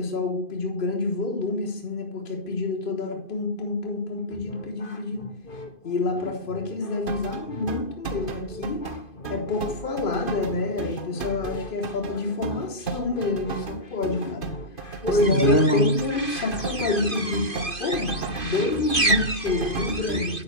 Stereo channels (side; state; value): right; late; 2.5 ms